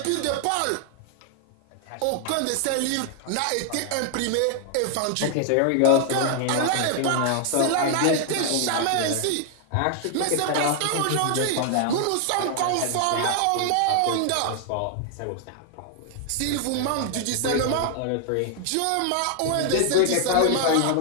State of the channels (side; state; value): both; different; correlation 0.00